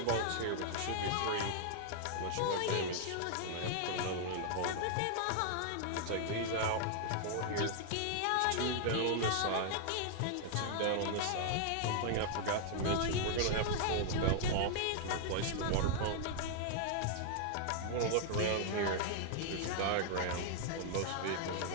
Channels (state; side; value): different; both; correlation 0.00